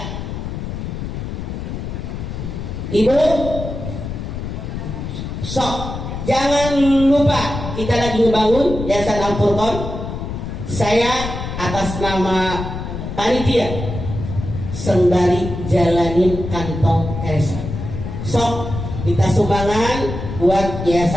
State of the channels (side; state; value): left; noise; rumble, 6 dB below the sound